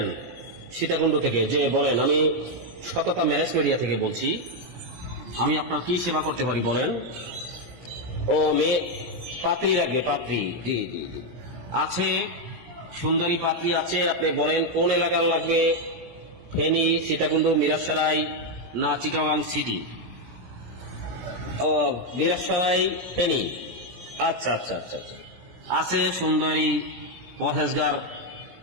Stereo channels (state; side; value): late; left; 17 ms